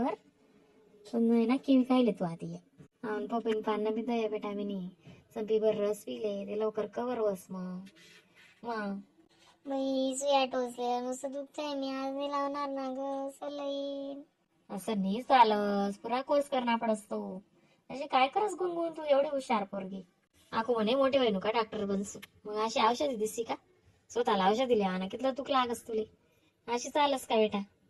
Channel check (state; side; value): identical; both; correlation 1.00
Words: पण नाही ना किवी खायले तू आधी पपईन पान बी दया बेटा मी संपी भर रस पिले ते लवकर कवर बस मग बाई सुया टोचले नुसतं दुखतंय. मी आज नाही लावणार ना ग सलाईन. असं नाही चालस पुरा कोर्स करणार पडस तो असे काय करस गुणगुण तू एवढी हुशार पोरगी आखो म्हणे मोठे होईन का डॉक्टर बनसू मग अशी औषधी दिसती का स्वतःला औषध दिली ना कितलं तुक लागस तुले अशी चालस का बेटा.